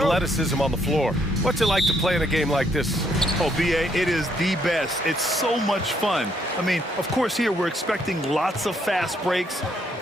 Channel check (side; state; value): both; normal; correlation 0.71